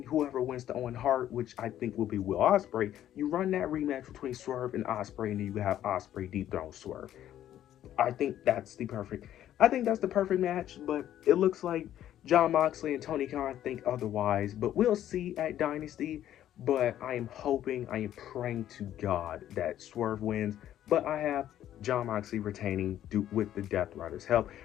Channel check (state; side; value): quieter; right; 11.7 dB